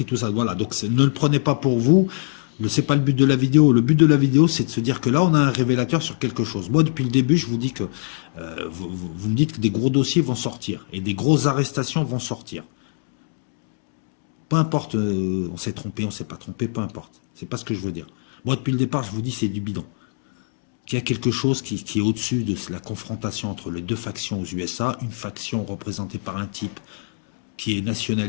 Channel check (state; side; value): silent; right; digital silence